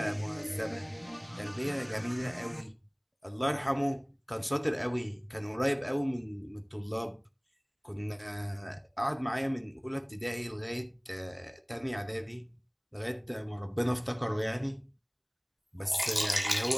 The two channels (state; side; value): identical; both; correlation 1.00